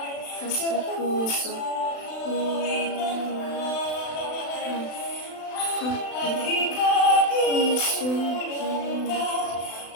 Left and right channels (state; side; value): late; right; 36 ms